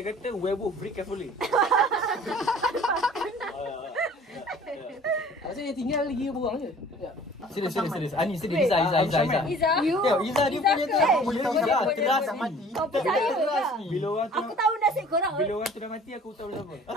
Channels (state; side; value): normal; both; correlation 0.49